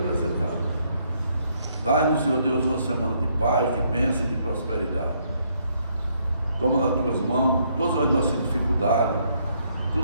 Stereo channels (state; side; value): inverted; both; correlation -0.71